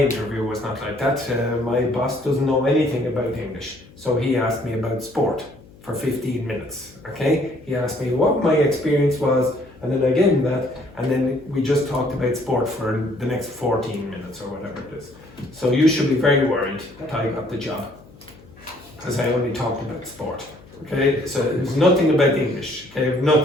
was not like that. My boss doesn't know anything about English. So he asked me about sport for 15 minutes, okay? He asked me what my experience was, and then I gave him that, and then we just talked about sport for the next 14 minutes or whatever it is. So you should be very worried that I got the job, because I only talked about sport, okay? So there's nothing about English, okay?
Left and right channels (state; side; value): noise; left; hum, 24 dB below the sound